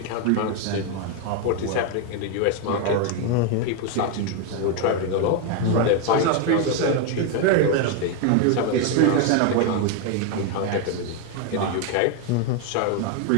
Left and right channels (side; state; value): both; different; correlation 0.01